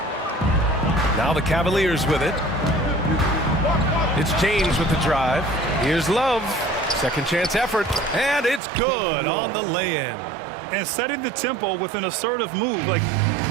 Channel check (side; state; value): left; drops out; at 8.6 s